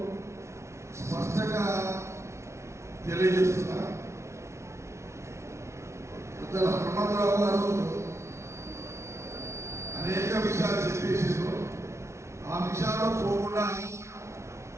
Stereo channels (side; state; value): left; late; 0.13 ms